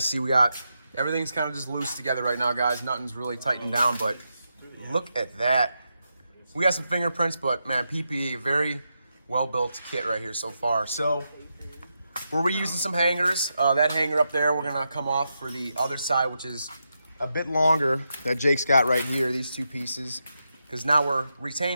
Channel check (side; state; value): both; inverted; correlation -0.86